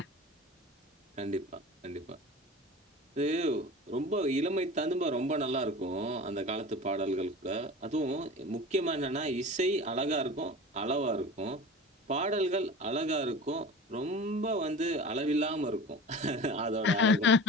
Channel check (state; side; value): normal; both; correlation 0.35